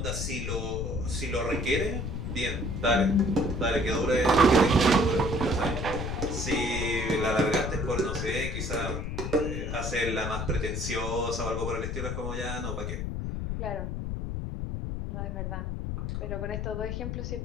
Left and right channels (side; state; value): left; noise; rumble, 3 dB below the sound